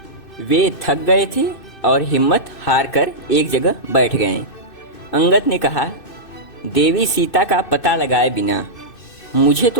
वे थक गए थे और हिम्मत हार कर एक जगह बैठ गए। अंगद ने कहा, देवी सीता का पता लगाए बिना मुझे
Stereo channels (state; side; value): late; right; 2.6 ms